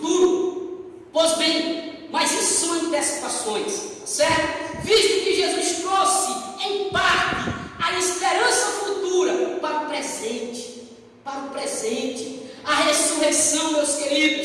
Pois bem, mas isso são antecipações, certo? Visto que Jesus trouxe, em parte, a esperança futura para o presente. A ressurreição, meus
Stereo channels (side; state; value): both; identical; correlation 1.00